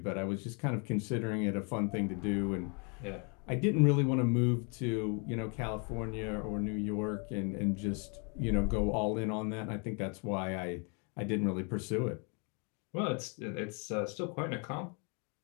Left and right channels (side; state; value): right; quieter; 36.4 dB